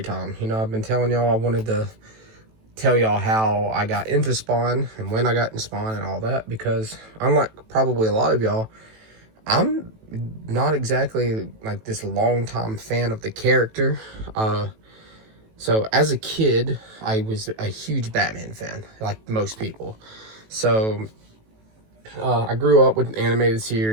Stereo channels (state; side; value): late; left; 18 ms